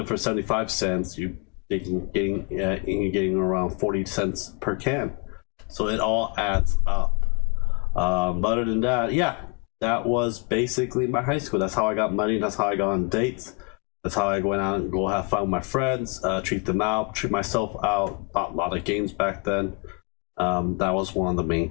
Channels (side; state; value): right; quieter; 31.8 dB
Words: for 75 cents. You're getting around 40 cents per can. So it all adds up. Other than that, yeah, that was basically my high school. That's how I got money. That's how I got on dates. That's how I went out and go have fun with my friends, treat them out, treat myself out. Bought a lot of games back then. That was one of the main